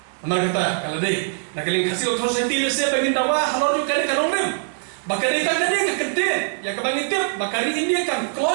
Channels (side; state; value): left; silent; digital silence